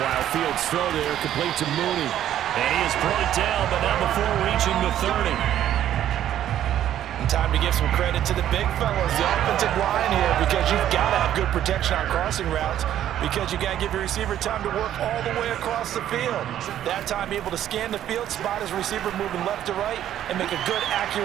Fields' throw there complete to Mooney. And he is brought down, but not before reaching the 30. Time to give some credit to the big fellas, the offensive line here, because you've got to have good protection on crossing routes, because you got to give your receiver time to work all the way across the field. That time able to scan the field, spot his receiver moving left to right, and make a good,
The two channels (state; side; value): quieter; left; 11.4 dB